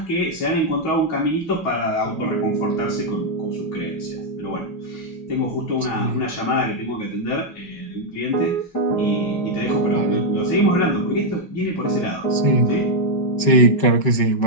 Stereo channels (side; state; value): right; late; 5.4 ms